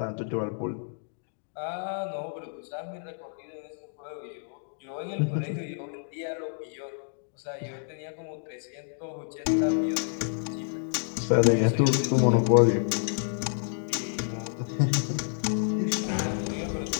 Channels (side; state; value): right; silent; digital silence